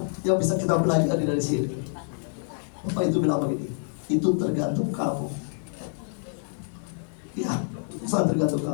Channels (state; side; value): silent; right; digital silence